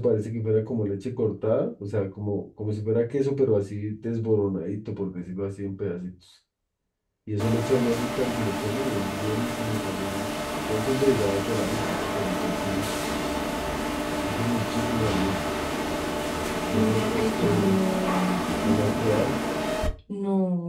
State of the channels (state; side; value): identical; both; correlation 1.00